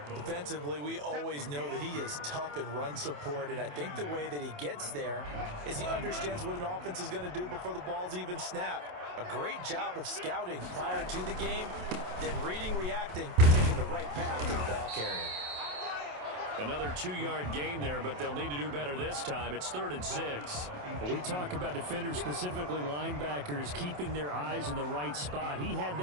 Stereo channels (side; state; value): left; late; 27 ms